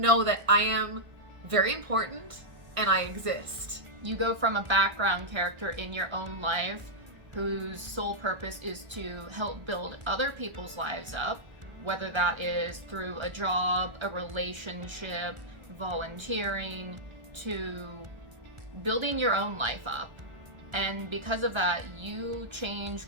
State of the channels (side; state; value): left; late; 1.3 ms